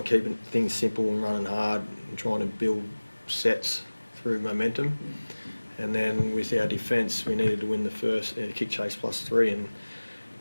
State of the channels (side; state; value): both; inverted; correlation -1.00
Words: keeping things simple and running hard and trying to build sets through momentum. And then with our defence, we needed to win the first kick chase +3 and,